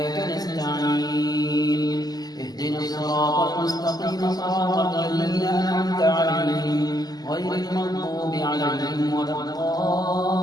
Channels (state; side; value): late; right; 0.19 ms